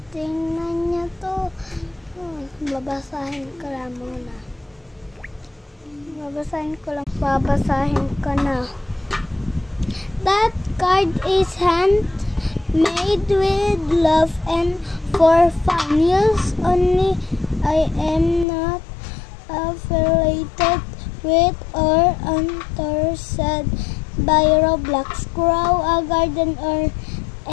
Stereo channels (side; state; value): right; drops out; at 18.4 s